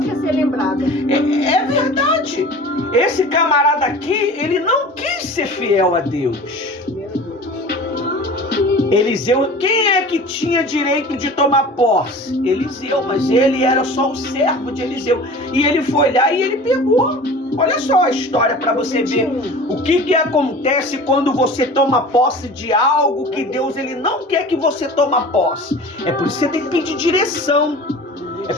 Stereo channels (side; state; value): both; normal; correlation 0.39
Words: ser lembrada. É verdade. Esse camarada aqui, ele não quis ser fiel a Deus. Eliseu, quem é que tinha direito de tomar posse? Eliseu, mas ele era só o servo de Eliseu. E ele foi lá e ele pegou. Olha só a história para você ver o que acontece quando você toma posse de algo que Deus ele não quer que você toma posse. É por isso que você tem que pedir direção. É